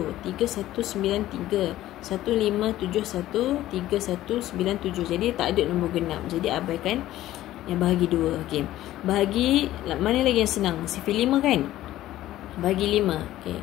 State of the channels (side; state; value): right; quieter; 14.4 dB